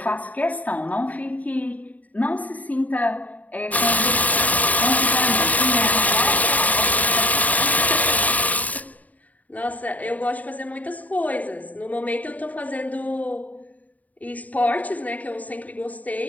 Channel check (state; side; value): late; right; 0.073 ms